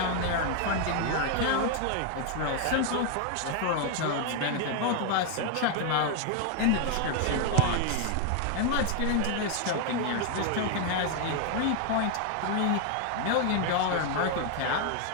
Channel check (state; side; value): different; both; correlation 0.00